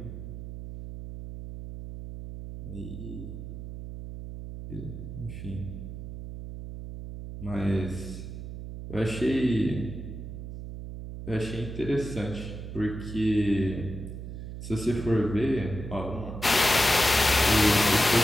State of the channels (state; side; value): noise; right; hum, 9 dB below the sound